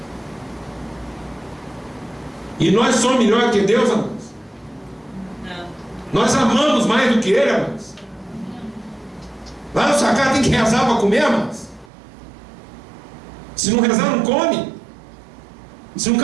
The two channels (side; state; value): left; drops out; at 11.9 s